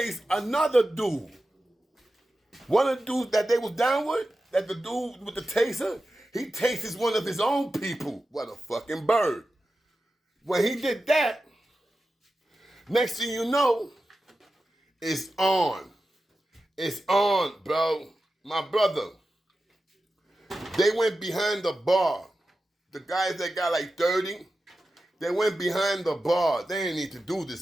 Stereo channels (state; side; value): normal; both; correlation 0.92